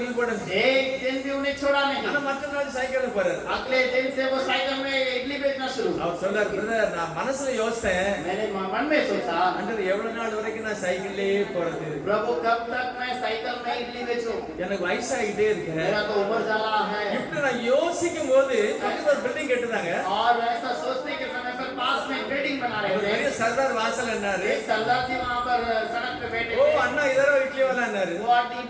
போடுங்க. एक दिन भी उन्हें छोड़ा ஆனா नहीं। மற்ற நாள் சைக்கிள்ல போறாரு. अगले दिन से वो साइकिल में इडली बेचना शुरू। அவர் சொல்றாரு, பிரதர் நான் மனசுல யோசித்தேன், मैंने मन में सोचा ஆண்டவர் எவ்வளவு நாள் வரைக்கும் நான் சைக்கிள்லயே போறது. प्रभु कब तक मैं साइकिल में इडली बेचूं, எனக்கு வயசாகிட்டே இருக்கு. मेरा तो उम्र जाला है। இப்படி நான் யோசிக்கும் போது பக்கத்துல ஒரு பில்டிங் கட்டுறாங்க. और ऐसा सोचने के समय पर पास में बिल्डिंग बना ஒரு रहे பெரிய थे। சர்தார் வாசல் என்னாரு. एक सरदार जी वहाँ पर सड़क पे बैठे ஓ थे। அண்ணா இதரோ இட்லி वाला என்னாரு. वो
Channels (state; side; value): identical; both; correlation 1.00